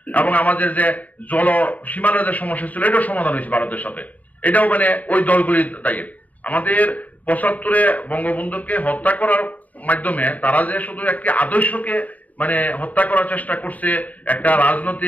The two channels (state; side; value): late; right; 0.073 ms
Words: এবং আমাদের যে জল সীমানার যে সমস্যা ছিল, এটাও সমাধান হয়েছে ভারতের সাথে, এটাও ওই দলগুলি দায়ী। আমাদের 75-এ বঙ্গবন্ধুকে হত্যা করার মাধ্যমে তারা যে শুধু একটি আদর্শকে হত্যা করার চেষ্টা করছে, একটা